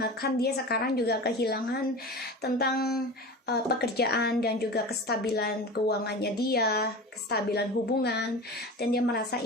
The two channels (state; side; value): normal; both; correlation 0.32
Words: dia sekarang juga kehilangan tentang pekerjaan dan juga kestabilan keuangannya dia, kestabilan hubungan. Dan dia merasa